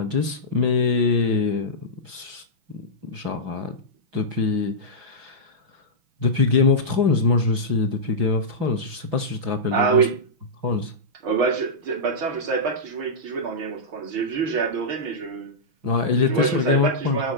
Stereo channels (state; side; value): late; left; 6.1 ms